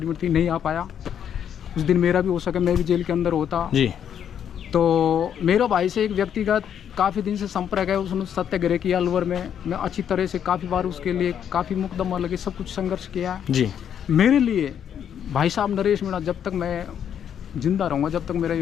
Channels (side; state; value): right; quieter; 8.9 dB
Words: थी, नहीं आ पाया। उस दिन मेरा भी हो सके, मैं भी जेल के अंदर होता। जी तो मेरे भाई से एक व्यक्तिगत काफ़ी दिन से संपर्क है, उसने सत्याग्रह किया अलवर में। मैं अच्छी तरह से काफ़ी बार उसके लिए काफ़ी मुकदमा लगे, सब कुछ संघर्ष किया। जी मेरे लिए भाई साहब नरेश मीणा जब तक मैं जिंदा रहूँगा, जब तक मेरा